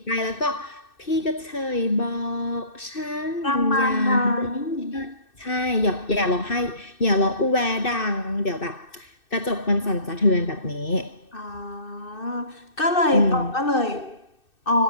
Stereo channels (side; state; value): right; late; 2.6 ms